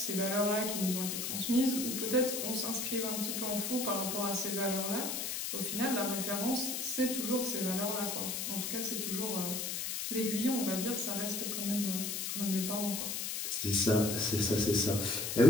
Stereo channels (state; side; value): noise; left; hiss, 2 dB below the sound